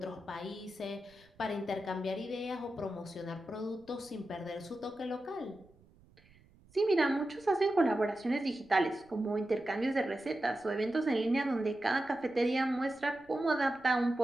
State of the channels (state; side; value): noise; right; rumble, 28 dB below the sound